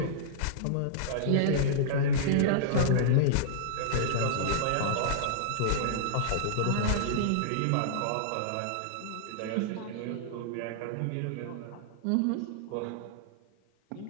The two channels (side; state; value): both; different; correlation -0.02